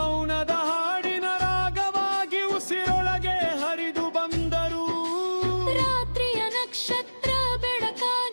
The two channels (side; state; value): both; inverted; correlation -1.00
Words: ಹಾಡಿನ ರಾಗವಾಗಿ ಉಸಿರೊಳಗೆ ಹರಿದು ಬಂದರು ರಾತ್ರಿಯ ನಕ್ಷತ್ರ